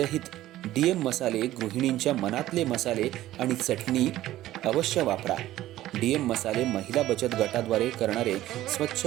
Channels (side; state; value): left; quieter; 14.7 dB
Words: डीएम मसाले, गृहिणींच्या मनातले मसाले आणि चटणी अवश्य वापरा. डीएम मसाले महिला बचत गटाद्वारे करणारे स्वच्छ